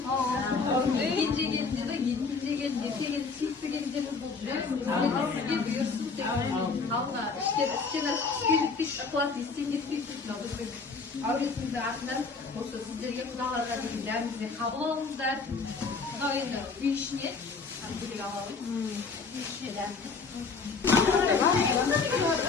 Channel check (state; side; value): quieter; right; 4.6 dB